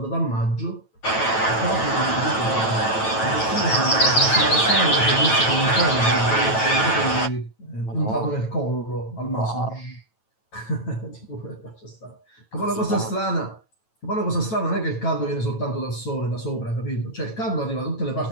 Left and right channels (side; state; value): right; late; 9.1 ms